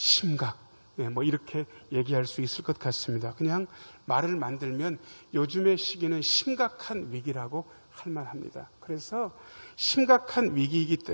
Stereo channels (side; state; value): both; inverted; correlation -1.00